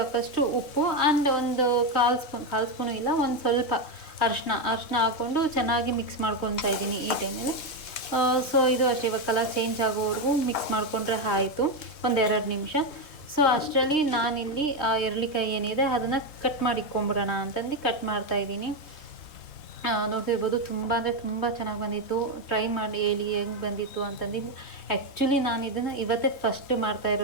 ಉಪ್ಪು ಆ್ಯಂಡ್ ಒಂದು ಕಾಲು ಸ್ಪೂನು ಇಲ್ಲ, ಒಂದು ಸ್ವಲ್ಪ ಅರಿಶಿನ ಹಾಕ್ಕೊಂಡು ಚೆನ್ನಾಗಿ ಮಿಕ್ಸ್ ಮಾಡ್ಕೊತಾ ಇದ್ದೀನಿ ಈ ಟೈಮಲ್ಲಿ. ಸೊ ಇದು ಅಷ್ಟೇ, ಇವಾಗ ಕಲರ್ ಚೇಂಜ್ ಆಗೋವರೆಗೂ ಮಿಕ್ಸ್ ಮಾಡಿಕೊಂಡ್ರೆ ಆಯಿತು, 1-2 ನಿಮಿಷ. ಸೊ ಅಷ್ಟರಲ್ಲಿ ನಾನಿಲ್ಲಿ ಎರಳೆಕಾಯಿ ಏನಿದೆ ಅದನ್ನು ಕಟ್ ಮಾಡಿಕೊಂಬಿಡೋಣ ಅಂತಂದು ಕಟ್ ಮಾಡ್ತಾಯಿದ್ದೀನಿ. ನೋಡ್ತಿರ್ಬೋದು, ತುಂಬ ಅಂದರೆ ತುಂಬ ಚೆನ್ನಾಗಿ ಬಂದಿತ್ತು. ಟ್ರೈ ಮಾಡಿ ಹೇಳಿ ಹೆಂಗೆ ಬಂದಿತ್ತು ಅಂತಂದು. ಆ್ಯಕ್ಚುಲಿ ನಾನು ಇದನ್ನು ಇವತ್ತೇ ಫಸ್ಟ್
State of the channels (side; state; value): right; late; 3.4 ms